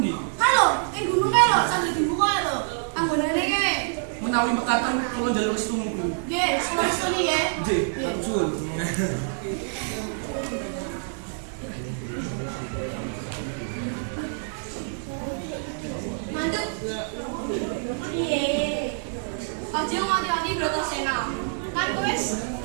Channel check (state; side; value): silent; left; 59 dB below the other